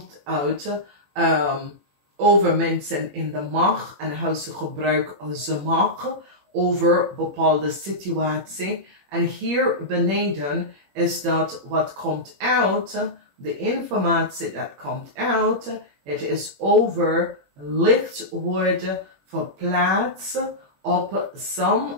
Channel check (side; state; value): left; late; 21 ms